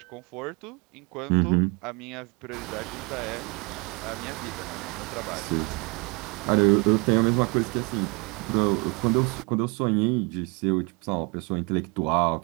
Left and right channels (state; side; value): quieter; left; 30.0 dB